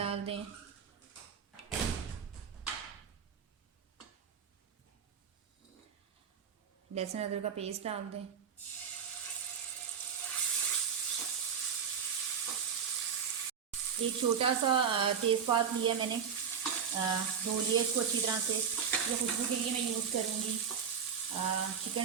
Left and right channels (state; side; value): quieter; left; 7.1 dB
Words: दें। लहसुन अदरक का पेस्ट डाल दें। एक छोटा सा तेज़पात लिया मैंने, धो लिया इसको अच्छी तरह से। ये खुशबू के लिए मैं यूज़ करूँगी।